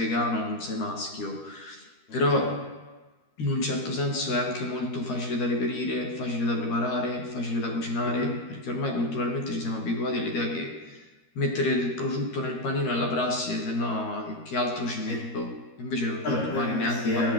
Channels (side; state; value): right; late; 13 ms